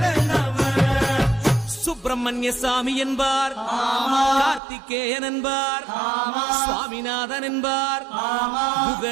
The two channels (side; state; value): left; drops out; at 4.6 s